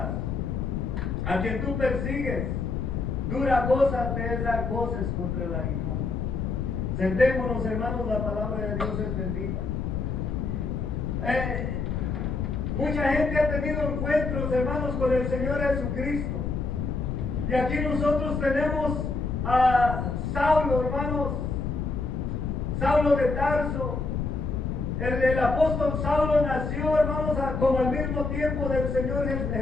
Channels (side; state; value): left; noise; rumble, 2 dB below the sound